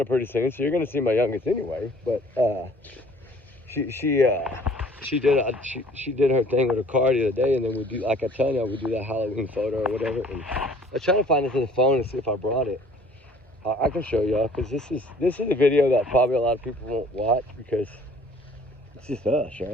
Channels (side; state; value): both; normal; correlation 0.53